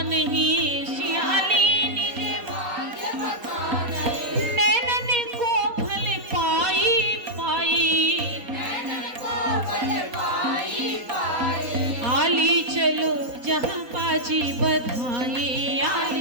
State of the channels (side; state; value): left; late; 3.8 ms